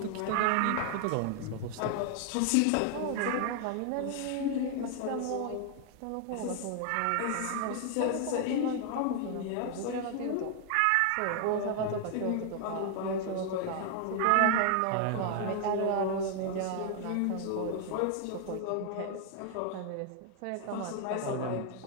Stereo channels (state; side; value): different; both; correlation 0.00